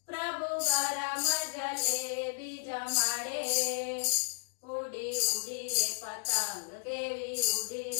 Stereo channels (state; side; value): silent; right; digital silence